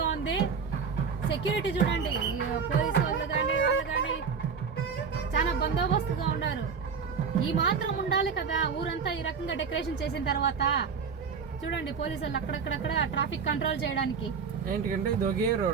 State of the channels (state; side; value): quieter; left; 5.9 dB